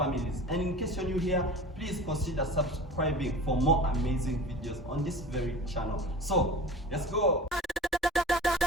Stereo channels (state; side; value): normal; both; correlation 0.36